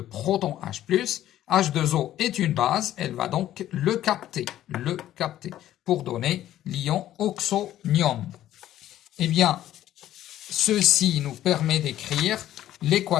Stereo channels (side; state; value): right; quieter; 12.8 dB